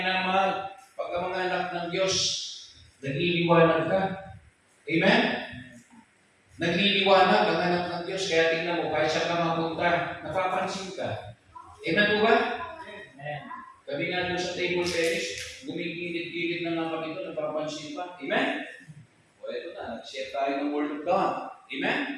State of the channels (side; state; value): both; identical; correlation 1.00